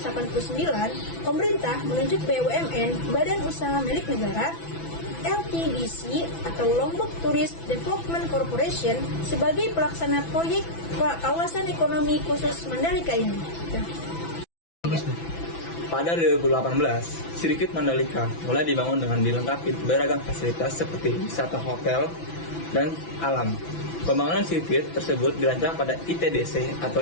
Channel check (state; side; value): late; right; 6.0 ms